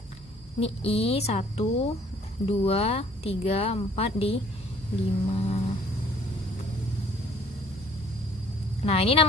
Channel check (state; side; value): normal; both; correlation 0.57